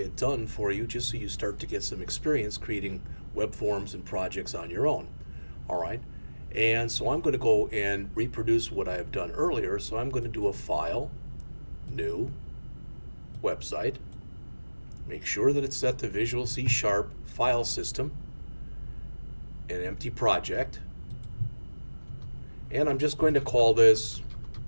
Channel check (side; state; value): both; inverted; correlation -1.00